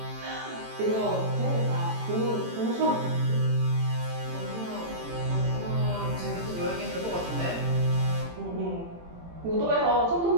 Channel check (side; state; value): left; late; 18 ms